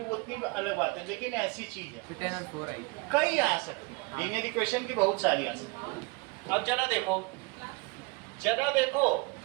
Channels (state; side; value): quieter; left; 27.6 dB